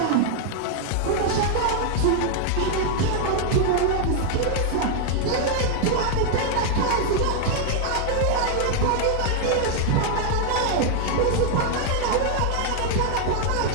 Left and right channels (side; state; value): both; different; correlation 0.00